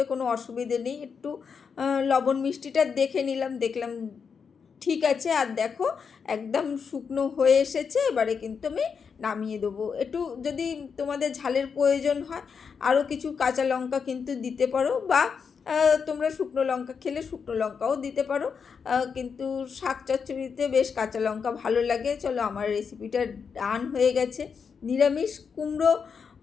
কোনো অসুবিধে নেই। একটু লবণ মিষ্টিটা দেখে নিলাম, দেখলাম ঠিক আছে। আর দেখো একদম শুকনো হয়ে এসেছে, এবারে কিন্তু আমি নামিয়ে দেবো। একটু যদি তোমাদের ঝালের প্রয়োজন হয় আরও কিছু কাঁচা লঙ্কা কিন্তু দিতে পারো, বা তোমরা শুকনো লঙ্কা খেলে শুকনো লঙ্কাও দিতে পারো, কিন্তু শাক চচ্চড়িতে বেশ কাঁচা লঙ্কা ভালো লাগে। চলো আমার রেসিপিটা ডান হয়ে গেছে। নিরামিষ কুমড়ো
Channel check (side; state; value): right; quieter; 6.1 dB